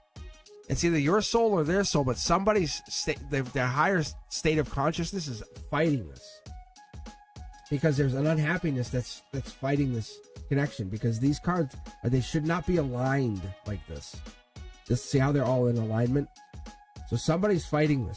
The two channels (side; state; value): both; identical; correlation 1.00